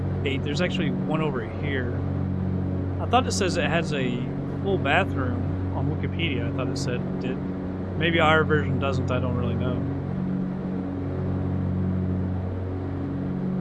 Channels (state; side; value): identical; both; correlation 1.00